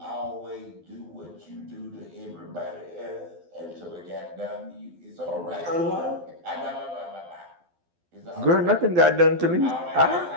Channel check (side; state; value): left; late; 12 ms